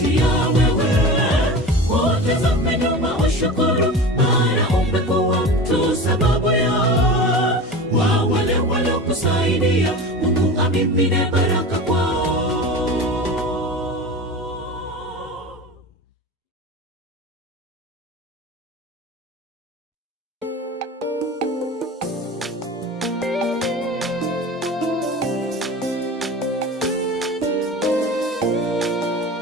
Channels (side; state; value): both; normal; correlation 0.31